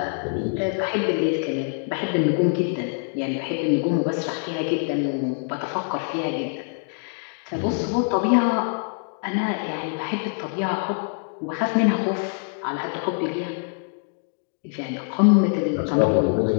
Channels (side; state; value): right; silent; 57 dB below the other